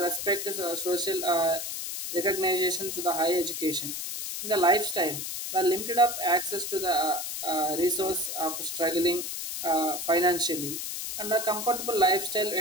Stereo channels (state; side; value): noise; left; hiss, 5 dB below the sound